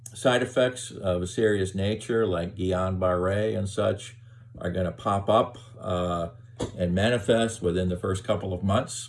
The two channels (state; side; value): identical; both; correlation 1.00